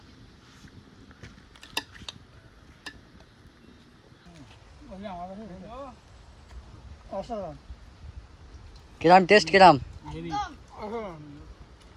অসাধারণ। কিরাম টেস্ট কিরাম?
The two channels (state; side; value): identical; both; correlation 1.00